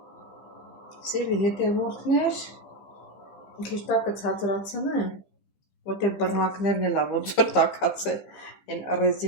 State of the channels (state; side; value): late; right; 15 ms